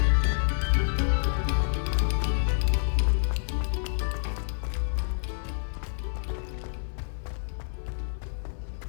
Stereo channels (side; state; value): right; silent; 57 dB below the other